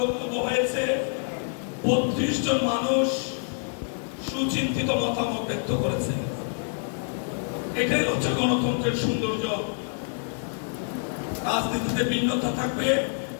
বক্তব্য হয়েছে। ৩২ জন মানুষ সুচিন্তিত মতামত ব্যক্ত করেছে। এটাই হচ্ছে গণতন্ত্রের সৌন্দর্য। রাজনীতিতে ভিন্নতা থাকবে,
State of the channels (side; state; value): right; silent; digital silence